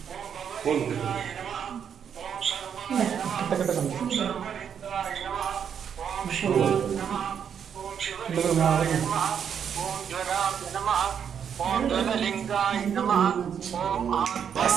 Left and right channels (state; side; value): quieter; left; 7.9 dB